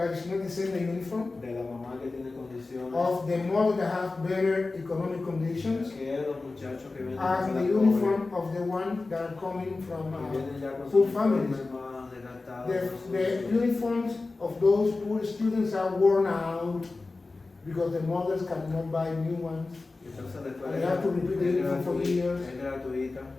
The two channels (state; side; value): quieter; right; 3.6 dB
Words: it's not the same the uniform de la mamá que tiene condiciones, of the mother that have better economic conditions que los muchachos que vienen as de the la uniform of the one that are coming from que vienen ya con poor sus families. uniformes más desgastados. The uniforms of those poor students are worn out because the mothers cannot buy new ones. Entonces la escuela And they have to repeat the uniform for years. es gratuita,